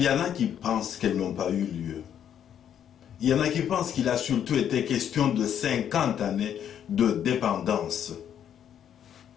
y en a qui pensent qu'elles n'ont pas eu lieu. Il y en a qui pensent qu'il a surtout été question de 50 années de dépendance.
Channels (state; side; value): quieter; right; 9.4 dB